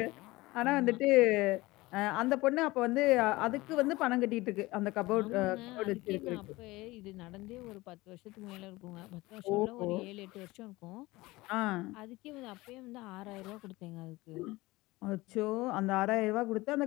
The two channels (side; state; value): right; quieter; 20.4 dB